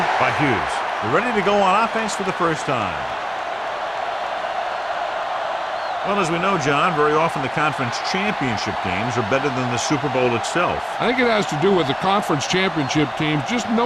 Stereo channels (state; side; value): identical; both; correlation 1.00